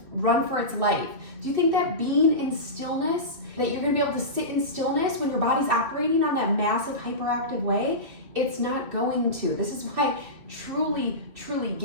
run for its life. Do you think that being in stillness, that you're gonna be able to sit in stillness when your body's operating on that massive hyperactive way? It's not going to. This is why truly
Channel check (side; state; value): left; late; 2.4 ms